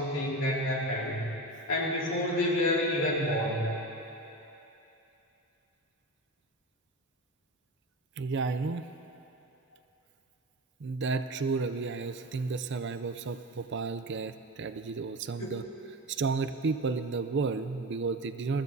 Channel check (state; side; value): normal; both; correlation 0.26